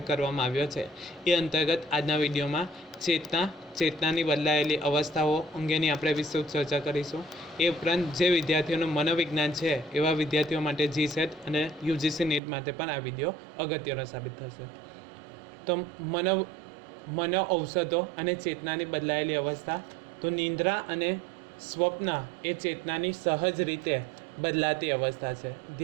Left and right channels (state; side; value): drops out; left; at 12.4 s